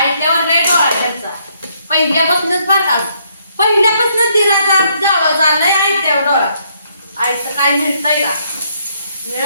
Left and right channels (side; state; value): both; inverted; correlation -0.71